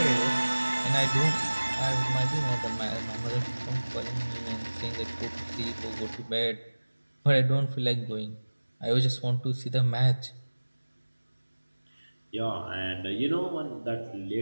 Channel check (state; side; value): inverted; both; correlation -1.00